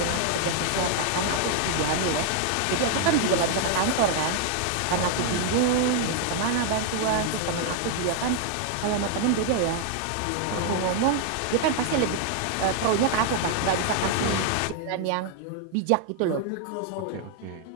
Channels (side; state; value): both; different; correlation 0.00